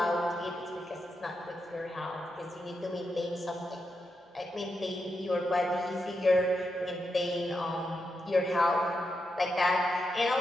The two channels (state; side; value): normal; both; correlation 0.85